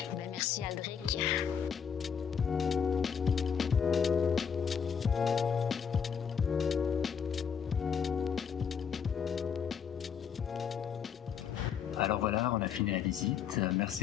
Ben, merci, Aldric. Alors voilà, on a fini la visite.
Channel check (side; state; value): right; quieter; 7.1 dB